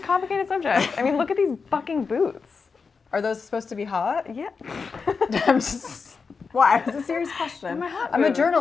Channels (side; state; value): right; quieter; 5.1 dB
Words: subject. I mean, look at these fucking boots. Are those supposed to be hot? Yeah. I'm just. Why? It's a serious question. I'm a